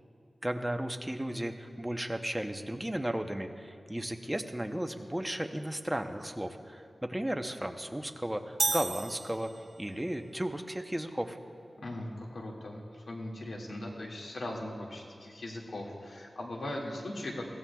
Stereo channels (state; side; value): normal; both; correlation 0.98